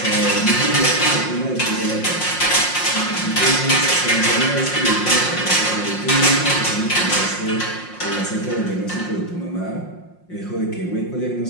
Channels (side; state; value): right; late; 5.6 ms